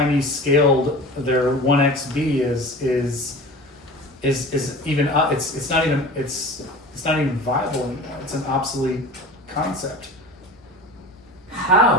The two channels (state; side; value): normal; both; correlation 0.36